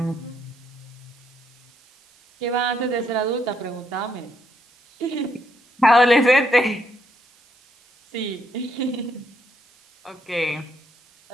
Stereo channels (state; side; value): noise; right; hiss, 30 dB below the sound